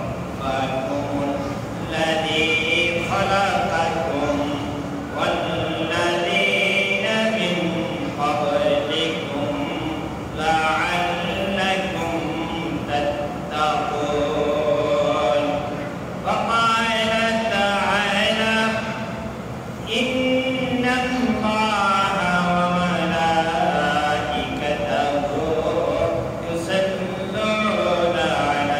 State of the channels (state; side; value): identical; both; correlation 1.00